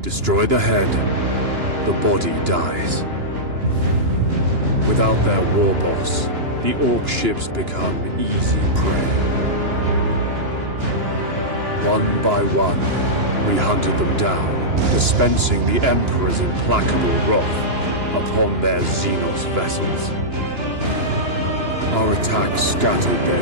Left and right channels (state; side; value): late; left; 2.9 ms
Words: the head, the body dies. Without their war boss, the Orc ships become easy prey. One by one, we hunted them down, dispensing the Emperor's implacable wrath upon their Xenos vessels. Our attack scattered